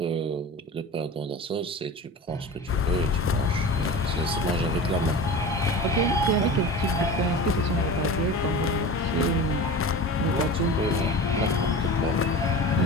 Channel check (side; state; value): both; normal; correlation 0.33